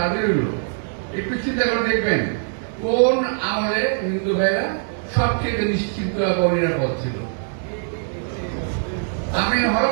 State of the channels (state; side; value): silent; left; digital silence